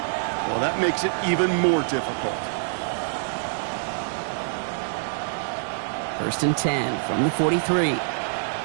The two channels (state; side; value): silent; left; digital silence